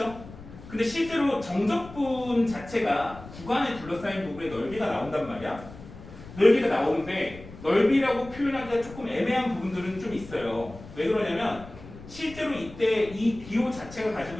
근데 실제로 정적분 자체가 구간에 둘러싸인 부분에 넓이가 나온단 말이야. 넓이가 나오는데 넓이라고 표현하기가 조금 애매한 부분들은 좀 있어요. 왜 그러냐면 실제로 이때 이 기호 자체가 가지고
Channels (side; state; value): left; noise; rumble, 16 dB below the sound